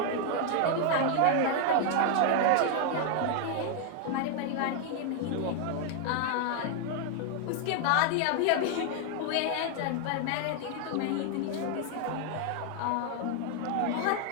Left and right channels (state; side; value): different; both; correlation 0.00